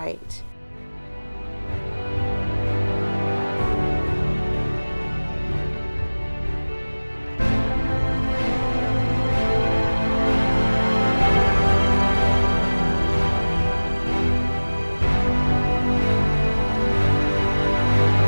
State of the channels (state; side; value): inverted; both; correlation -1.00